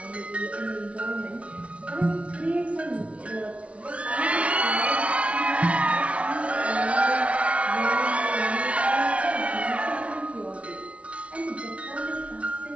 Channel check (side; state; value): left; late; 0.063 ms